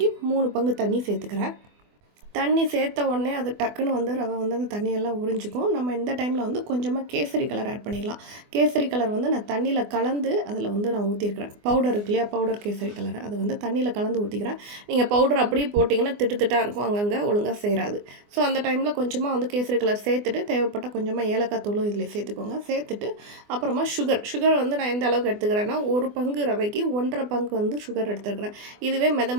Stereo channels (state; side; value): late; left; 24 ms